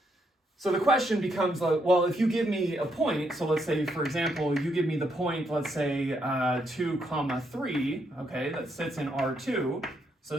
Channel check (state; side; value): normal; both; correlation 0.77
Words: So the question becomes, well, if you give me a point, so let's say, for example, you give me the point, let's say 2, comma, 3, okay, that sits in R2, so